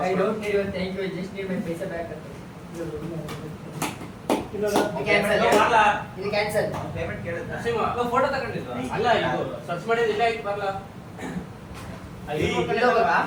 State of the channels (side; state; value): both; identical; correlation 1.00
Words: I don't need your thank you just need my paisa back ಅಂತ ಇದು ಕ್ಯಾನ್ಸಲ್ ಪೇಮೆಂಟ್ ಕೇಳಿದ್ದ ಫೋಟೋ ತಗೊಂಡಿದ್ವಾ ಅಲ್ಲ ಇದು ಸರ್ಚ್ ಮಾಡಿದ್ರೆ ಇಲ್ಲ ಆಯ್ತು ಬರಲ್ಲ